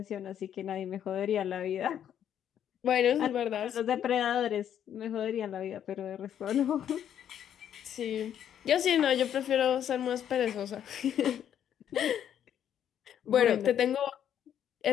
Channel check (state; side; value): quieter; right; 9.7 dB